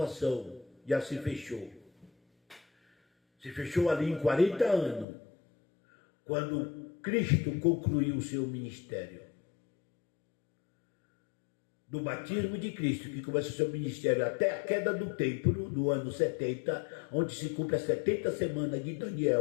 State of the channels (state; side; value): drops out; right; at 5.1 s